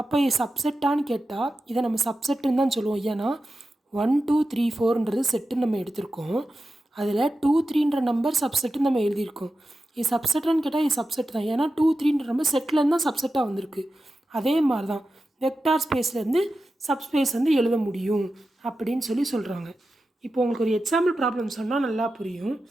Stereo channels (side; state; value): both; normal; correlation 0.92